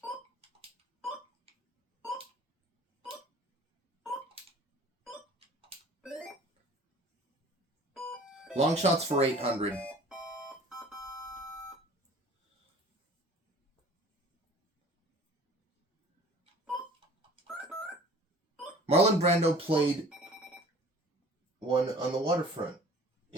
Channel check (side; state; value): both; normal; correlation 0.47